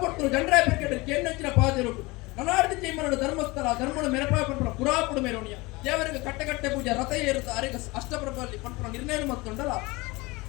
ಜನರಾಯ ಪೆಕೆಟ್ ಕೇನ್ನಚ್ಚಿನ ಪಾದಿರು ನನಾರ್ದಿ ಚೈಮನಡು ಧರ್ಮಸ್ಥಳ ಧರ್ಮಡು ಮೆರಪಾಯ ಪಂಪನ ಪುರಾಪುಡು ಮೆರವಣಿಯ ದೇವರಿಗೆ ಕಟ್ಟೆ ಪೂಜೆ ರಥ ಏರುತ್ತ ಅರೆಗ ಅಷ್ಟಪ್ರಭಲ್ಲಿ ಪಂಪನ ನಿರ್ಣಯ ಮತ್ತೊಂಡಲ್ಲ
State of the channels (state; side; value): quieter; right; 23.3 dB